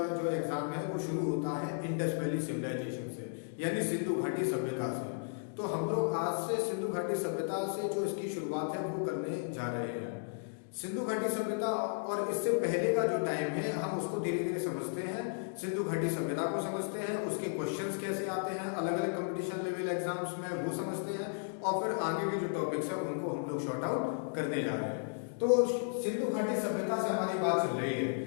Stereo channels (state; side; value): silent; right; digital silence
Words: जो एग्जाम है वो शुरू होता है इंडस वैली सिविलाइजेशन से, यानी सिंधु घाटी सभ्यता से। तो हम लोग आज से सिंधु घाटी सभ्यता से जो इसकी शुरुआत है वो करने जा रहे हैं। सिंधु घाटी सभ्यता और इससे पहले का जो टाइम है हम उसको धीरे धीरे समझते हैं। सिंधु घाटी सभ्यता को समझते हैं, उसके क्वेश्चंस कैसे आते हैं अलग अलग कंपटीशन लेवल एग्जाम्स में वो समझते हैं, और फिर आगे के जो टॉपिक्स है उनको हम लोग शॉर्ट आउट करने जा रहे हैं। तो सिंधु घाटी सभ्यता से हमारी बात चल रही है,